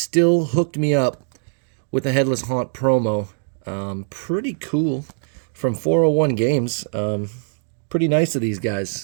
hooked me up with a Headless Haunt promo. Pretty cool from 401 Games. Pretty nice of these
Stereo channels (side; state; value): left; silent; digital silence